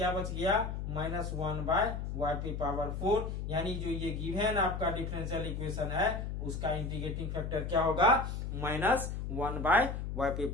बच गया माइनस 1 बाय वाई पे पावर 4। यानी जो ये गिवन आपका डिफरेंशियल इक्वेशन है उसका इंटीग्रेटिंग फैक्टर क्या होगा माइनस 1 बाय वाई पे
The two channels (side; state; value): left; noise; hum, 4 dB below the sound